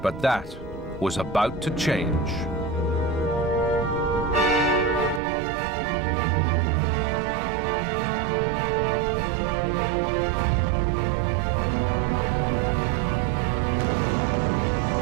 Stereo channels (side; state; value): left; drops out; at 5.2 s